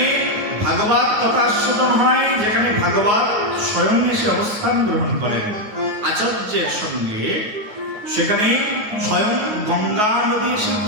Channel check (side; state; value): left; late; 9.4 ms